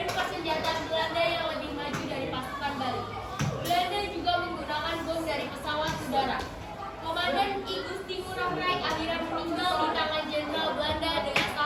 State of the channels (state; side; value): identical; both; correlation 1.00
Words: persenjataan Belanda yang lebih maju dari pasukan Bali. Belanda juga menggunakan bom dari pesawat udara. Komandan Igusti Ngurah Rai akhirnya meninggal di tangan Jenderal Belanda dengan